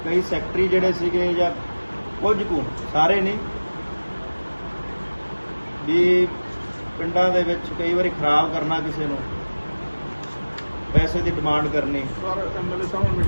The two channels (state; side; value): inverted; both; correlation -1.00